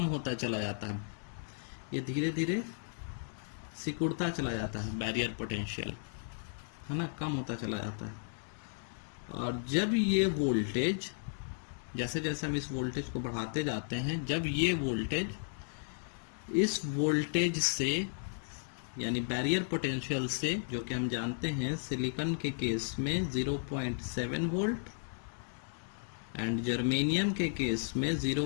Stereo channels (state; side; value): silent; right; digital silence